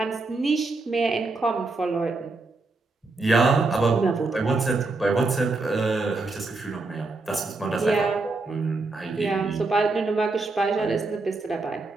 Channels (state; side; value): quieter; left; 3.5 dB